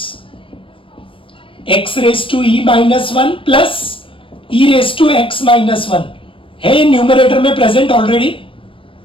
x raise to e minus 1 plus e raise to x minus 1 है न्यूमरेटर में प्रेजेंट ऑलरेडी.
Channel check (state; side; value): late; right; 0.25 ms